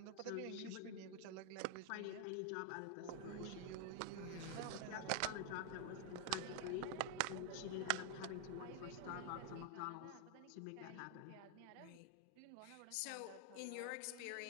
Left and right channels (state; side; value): different; both; correlation 0.00